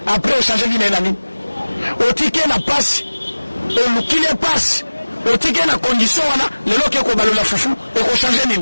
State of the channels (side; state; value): both; inverted; correlation -1.00